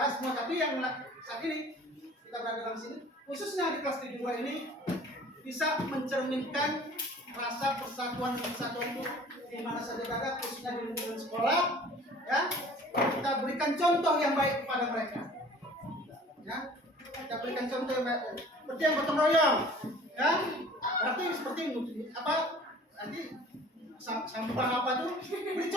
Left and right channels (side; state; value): both; normal; correlation 0.48